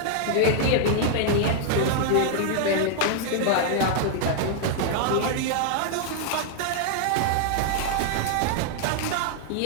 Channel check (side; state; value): both; different; correlation 0.00